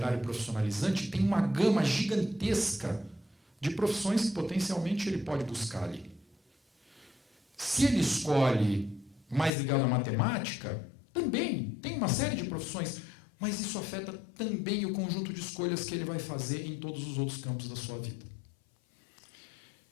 profissionalizante, tem uma gama gigantesca de profissões que potencialmente ele pode buscar ali. Se ele escolhe mais ligado à matemática, também tem uma série de profissões, mas isso afeta também o conjunto de escolhas que ele vai fazer em todos os outros campos da sua vida.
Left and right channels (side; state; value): right; drops out; at 9.5 s